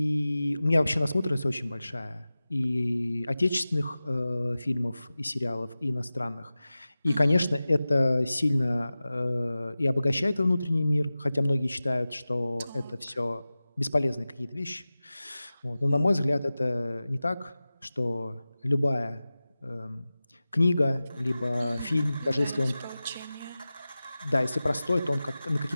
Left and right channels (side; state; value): both; inverted; correlation -0.96